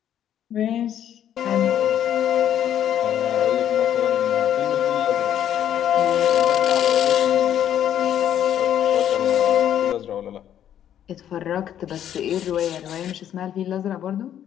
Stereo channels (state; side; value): quieter; right; 10.4 dB